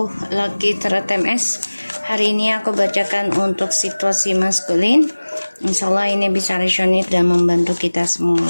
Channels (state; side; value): inverted; both; correlation -1.00